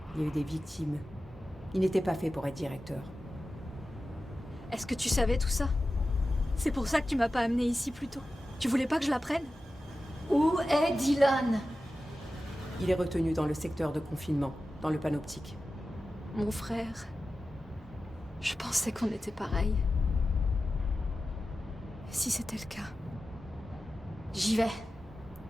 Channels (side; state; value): both; normal; correlation 0.93